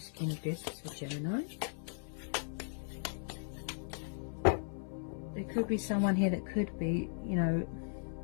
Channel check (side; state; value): right; silent; 53 dB below the other